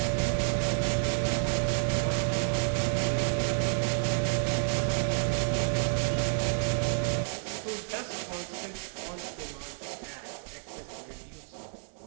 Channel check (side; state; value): left; silent; 58 dB below the other